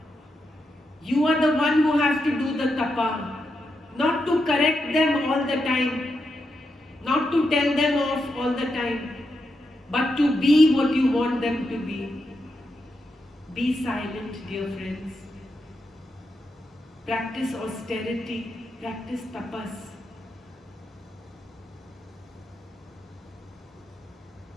You are the one who have to do the tapa, not to correct them all the time, not to tell them off all the time, but to be what you want them to be. Be silent, dear friends. Practice austerity, practice tapas.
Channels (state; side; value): normal; both; correlation 0.85